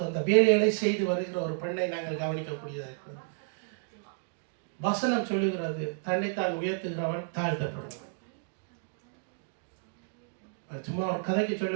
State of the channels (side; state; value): left; silent; 57 dB below the other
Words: அந்த வேலைகளை செய்து வருகிற ஒரு பெண்ணை நாங்கள் கவனிக்கக்கூடியதாக இருக்கிறது. வசனம் சொல்லுகிறது, தன்னைத்தான் உயர்த்துகிறவன் தாழ்த்தப்படுவான். சும்மா ஒரு கதைக்கு